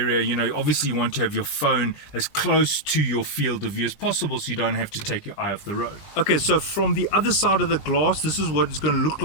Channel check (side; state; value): right; late; 20 ms